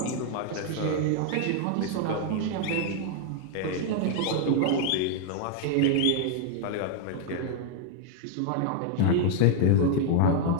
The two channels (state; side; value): different; both; correlation 0.00